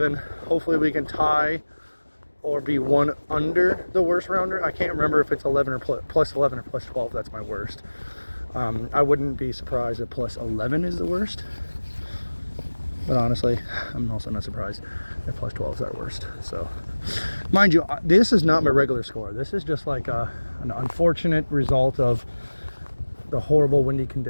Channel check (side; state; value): both; inverted; correlation -1.00